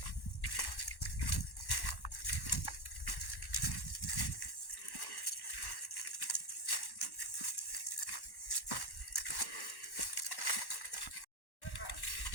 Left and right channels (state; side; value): late; right; 1.1 ms